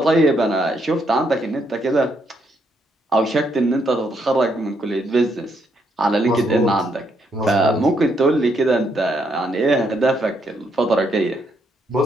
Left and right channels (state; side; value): normal; both; correlation 0.75